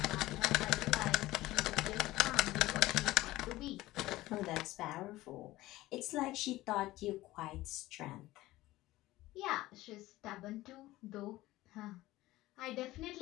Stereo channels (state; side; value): quieter; right; 17.4 dB